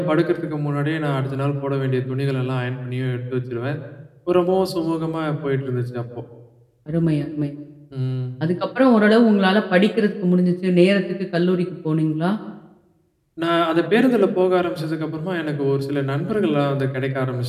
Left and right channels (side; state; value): both; identical; correlation 1.00